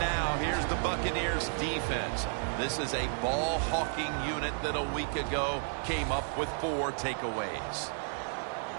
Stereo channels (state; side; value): silent; left; 56 dB below the other